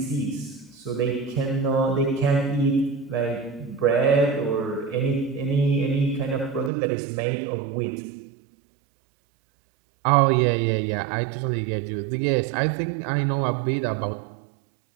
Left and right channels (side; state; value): left; drops out; at 6.7 s